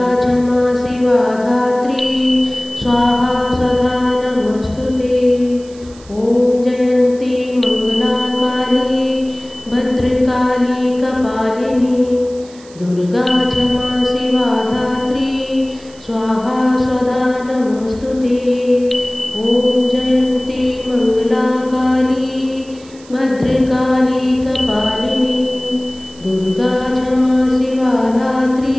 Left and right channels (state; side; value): noise; right; hiss, 24 dB below the sound